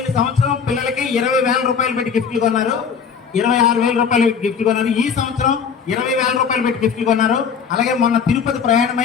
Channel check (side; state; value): right; quieter; 6.6 dB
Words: సంవత్సరం పిల్లలకి 20,000 రూపాయలు పెట్టి గిఫ్ట్లు కొన్నారు, 26,000 రూపాయలు గిఫ్ట్ కొన్నారు. ఈ సంవత్సరం 20,000 రూపాయలు పెట్టి గిఫ్ట్లు కొన్నారు. అలాగే మొన్న తిరుపతి